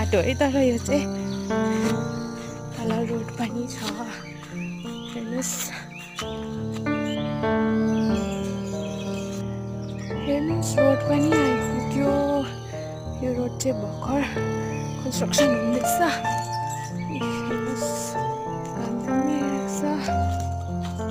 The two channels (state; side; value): identical; both; correlation 1.00